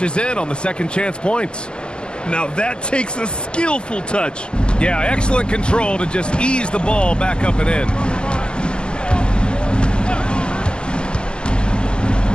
in on the second chance points. Now that takes a skillful touch. Yeah, excellent control to just ease the ball back up and in.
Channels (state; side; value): late; right; 0.048 ms